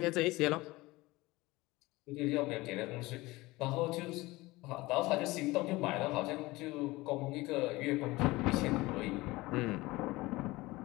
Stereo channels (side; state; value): right; quieter; 20.6 dB